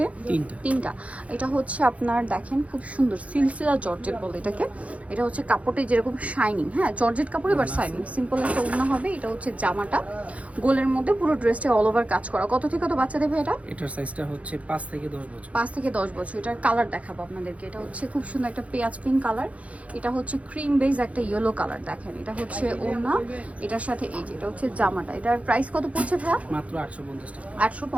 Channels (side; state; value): left; late; 0.065 ms